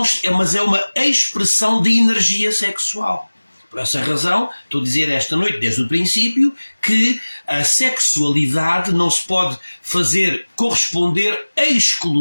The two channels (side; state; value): both; inverted; correlation -1.00